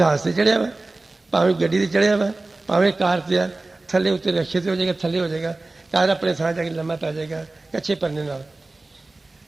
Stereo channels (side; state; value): left; quieter; 3.1 dB